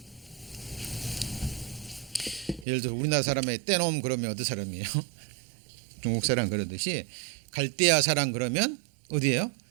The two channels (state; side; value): drops out; left; at 2.7 s